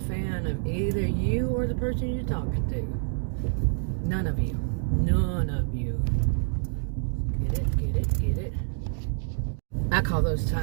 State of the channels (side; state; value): left; silent; digital silence